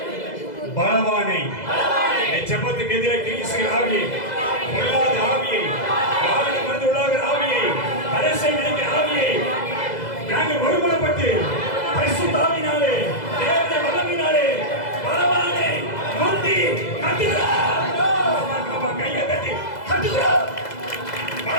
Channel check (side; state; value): right; late; 2.0 ms